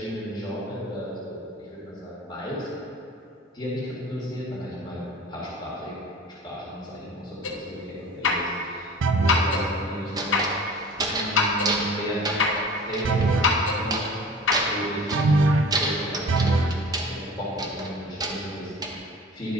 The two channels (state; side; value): normal; both; correlation 0.41